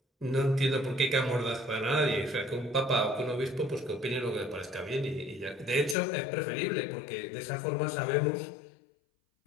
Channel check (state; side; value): drops out; right; at 6.0 s